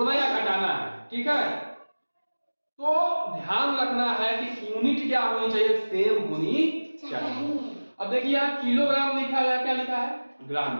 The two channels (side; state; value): both; inverted; correlation -1.00